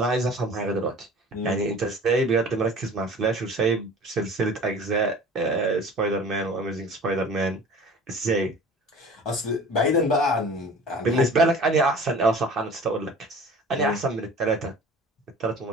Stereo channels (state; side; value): normal; both; correlation 0.43